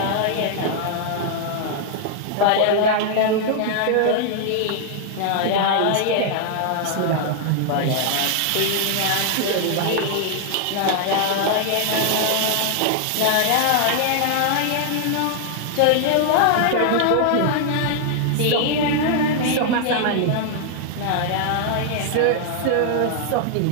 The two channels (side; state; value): both; different; correlation 0.00